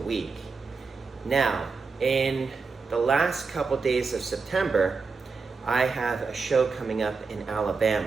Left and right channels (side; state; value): left; quieter; 4.6 dB